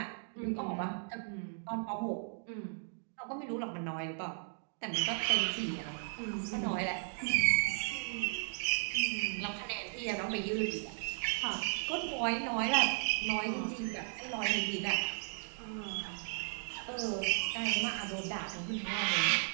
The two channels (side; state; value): left; silent; 54 dB below the other